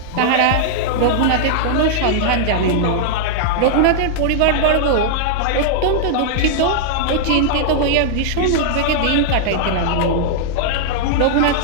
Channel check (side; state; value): both; different; correlation -0.01